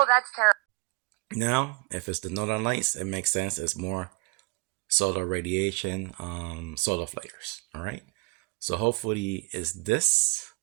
that's terrible. Now, if it's the northern lights, it makes sense. It's more solar radiation, solar flares. All right. So hopefully, it's this,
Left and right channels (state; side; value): quieter; left; 30.0 dB